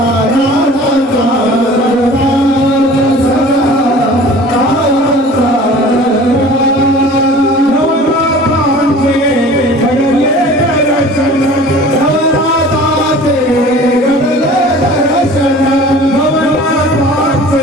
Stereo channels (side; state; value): both; normal; correlation 0.44